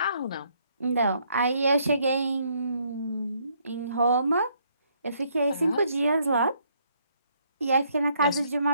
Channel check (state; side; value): inverted; both; correlation -0.70